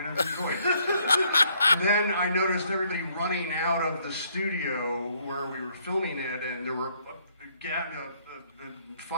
of enjoyed it. And then I noticed everybody running out of the studio where we were filming it, and there were the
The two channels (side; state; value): both; inverted; correlation -0.67